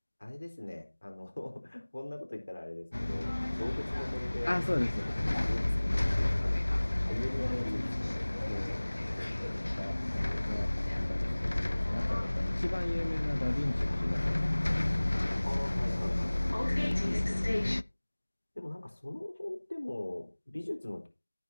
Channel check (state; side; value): inverted; both; correlation -1.00